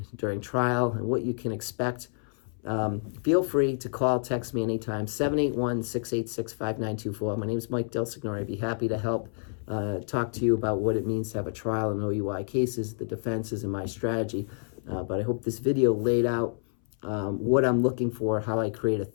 during trial, and what you can expect. Feel free to call, text me anytime, 781-686-5924. My name is Mike DelSignore. I'd be happy to help talk to you about what it means to have a trial in OUI cases, the defenses, and my strategy. But I hope this video laid out what I'm looking for, how I create a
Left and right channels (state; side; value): silent; right; 59 dB below the other